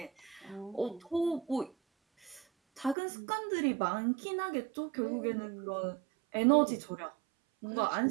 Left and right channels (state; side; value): drops out; left; at 3.0 s